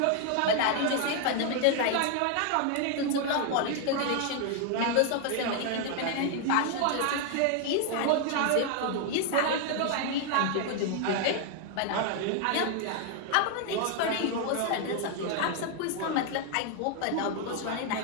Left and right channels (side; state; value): both; different; correlation 0.00